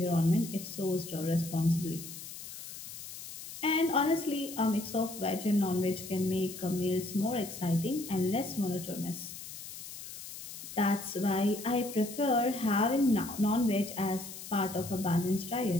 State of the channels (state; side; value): noise; left; hiss, 11 dB below the sound